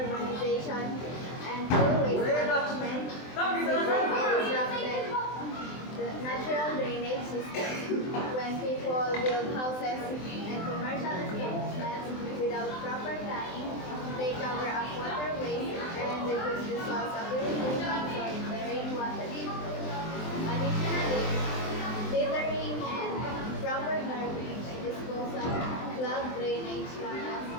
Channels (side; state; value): right; late; 23 ms